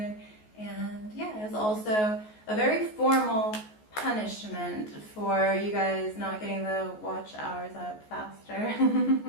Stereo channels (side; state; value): right; late; 14 ms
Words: And yeah, it's also a very formal punishment for you guys not getting the watch hours up faster,